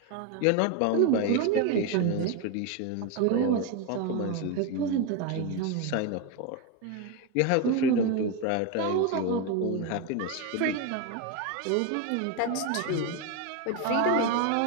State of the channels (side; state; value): both; different; correlation 0.03